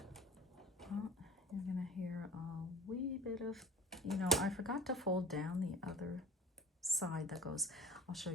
You're gonna hear a wee bit of, you know, I forgot to fold down the other side that goes, I'll show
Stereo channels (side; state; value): both; normal; correlation 0.41